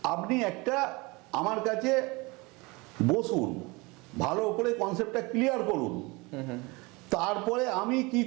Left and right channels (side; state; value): left; quieter; 25.3 dB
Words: আপনি একটা আমার কাছে বসুন, ভালো করে কনসেপ্টটা ক্লিয়ার করুন, তারপরে আমি কি